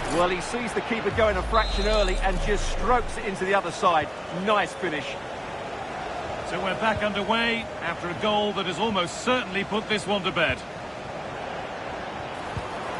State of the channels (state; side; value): identical; both; correlation 1.00